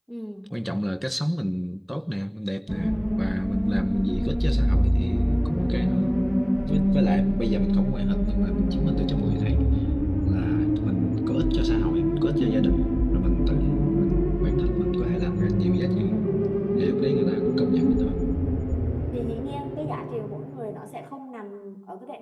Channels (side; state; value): both; identical; correlation 1.00